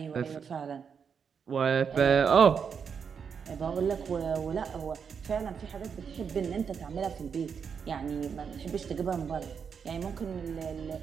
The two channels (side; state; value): left; quieter; 6.6 dB